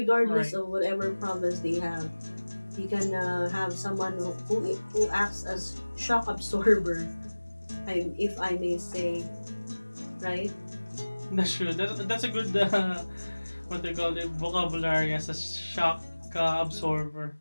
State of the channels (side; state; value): both; inverted; correlation -1.00